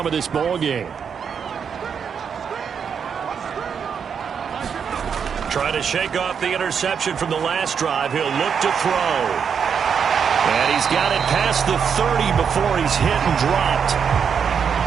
of this ball game. Trying to shake off the interception from the last drive. He'll look to throw. And he's got it past the 30 before he's hit and dropped.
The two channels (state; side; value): quieter; left; 7.0 dB